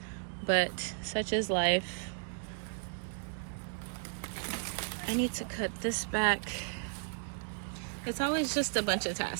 but such is life. I need to cut this back. It's always just a bunch of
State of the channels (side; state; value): left; silent; digital silence